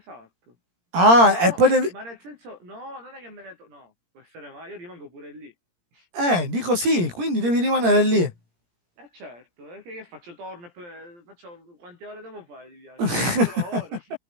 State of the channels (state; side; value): late; left; 17 ms